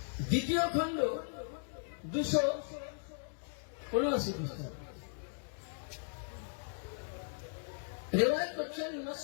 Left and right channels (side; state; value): right; silent; digital silence